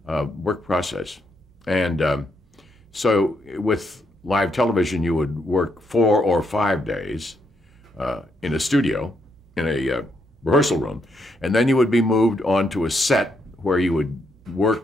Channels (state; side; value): normal; both; correlation 0.78